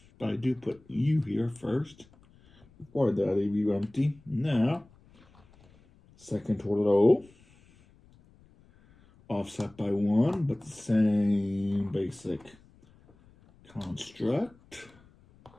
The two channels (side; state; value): left; noise; rumble, 28 dB below the sound